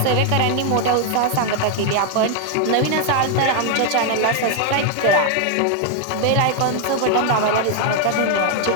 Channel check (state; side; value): different; both; correlation 0.00